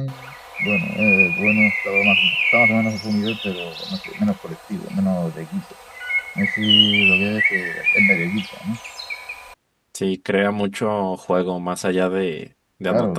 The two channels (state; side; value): identical; both; correlation 1.00